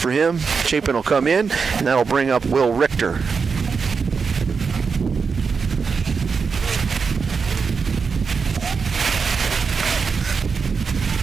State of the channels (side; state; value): left; quieter; 5.4 dB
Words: him. Chapin will come in, and that'll bring up Will Richter.